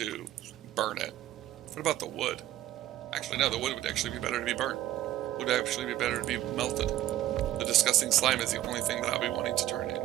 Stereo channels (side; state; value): left; quieter; 13.5 dB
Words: burn it. What about the wood? Actually, no, the wood would actually be better to be burnt. Would actually be better to be melted. The disgusting slime is the only thing that I'll be wanting to turn